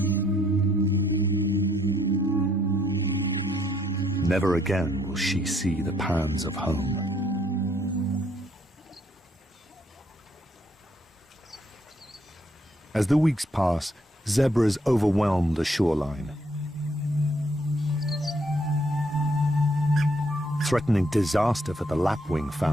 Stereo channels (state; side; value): normal; both; correlation 0.70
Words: Never again will she see the pans of home. As the weeks pass, zebras overwhelm the shoreline, threatening disaster for the lapwing